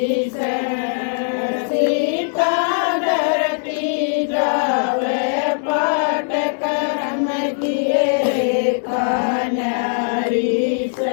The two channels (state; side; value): silent; right; digital silence